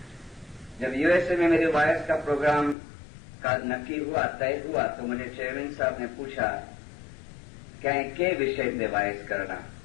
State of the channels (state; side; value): drops out; right; at 2.8 s